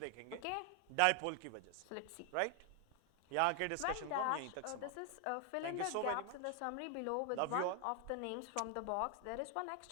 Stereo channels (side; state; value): both; different; correlation 0.00